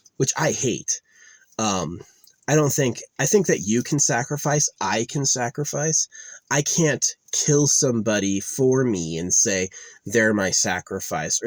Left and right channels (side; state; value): both; identical; correlation 1.00